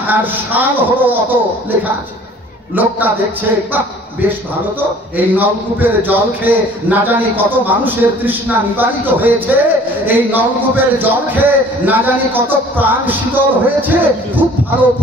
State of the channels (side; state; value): both; normal; correlation 0.51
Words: আর সাল হলো অত লেখা আছে। লোকটা দেখছে, বাহ, বেশ ভালো তো, এই নলকূপের জল খেয়ে না জানি কত মানুষের তৃষ্ণা নিবারিত হয়েছে, এই নলকূপের জল খেয়ে না জানি কত প্রাণ শীতল হয়েছে, খুব ভালো,